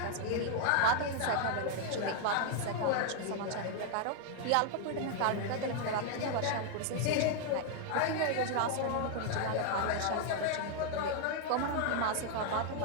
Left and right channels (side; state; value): both; different; correlation 0.00